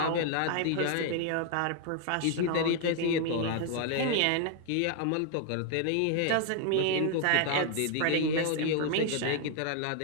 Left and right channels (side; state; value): both; different; correlation 0.00